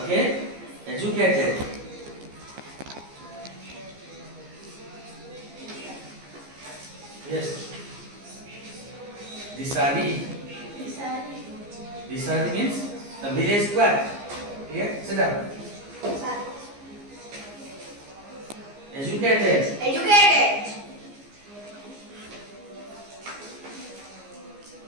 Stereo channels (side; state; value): left; late; 15 ms